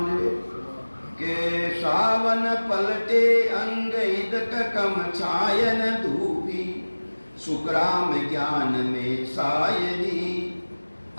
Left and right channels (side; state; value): both; inverted; correlation -1.00